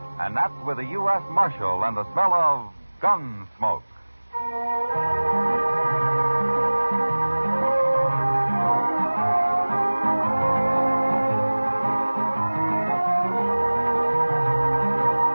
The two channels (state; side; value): inverted; both; correlation -1.00